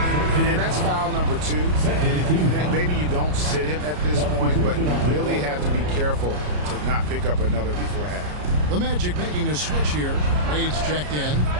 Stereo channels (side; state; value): left; late; 33 ms